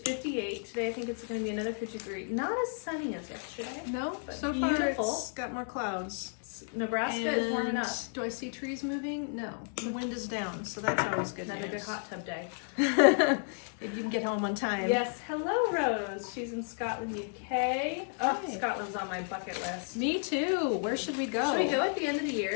Today I think it's going to be another 53. Not as sunny as yesterday. No, but so beautiful. far it's got more clouds. Nebraska is warming up. Do I see trees moving? No. The wind is down, so that's always good Another news. good hot tub day. If you can get home on time. Yes, hello Rose. She's in Scotland, UK. Oh, Hey. Scotland's on my bucket list. Me too. Where should we go? Should we go at the end of the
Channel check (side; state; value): right; silent; 56 dB below the other